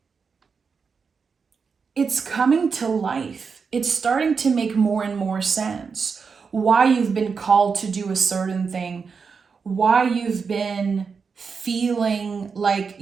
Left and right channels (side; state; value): left; quieter; 5.5 dB